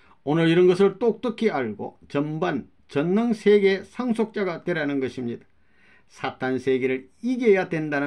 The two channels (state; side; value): identical; both; correlation 1.00